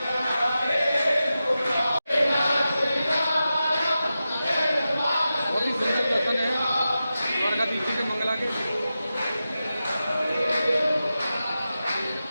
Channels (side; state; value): both; inverted; correlation -0.92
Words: बहुत ही सुंदर दर्शन है द्वारकाधीश जी के मंगला के।